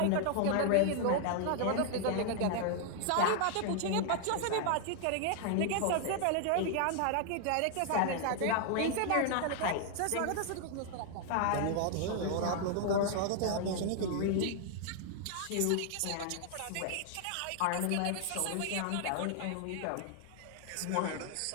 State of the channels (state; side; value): different; both; correlation 0.00